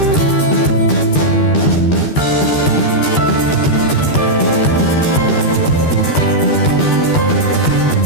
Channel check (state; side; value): late; right; 13 ms